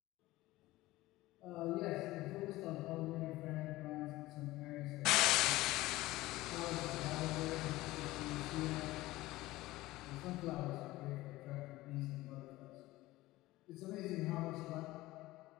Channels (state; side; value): quieter; right; 18.1 dB